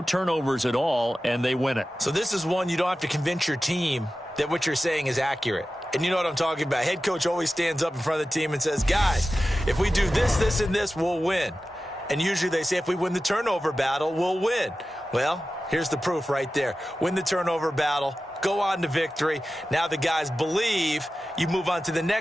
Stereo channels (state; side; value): normal; both; correlation 0.94